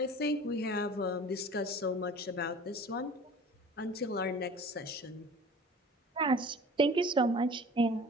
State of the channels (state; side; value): normal; both; correlation 0.43